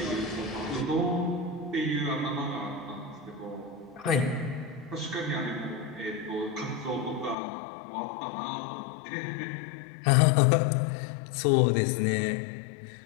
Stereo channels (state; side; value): drops out; right; at 7.4 s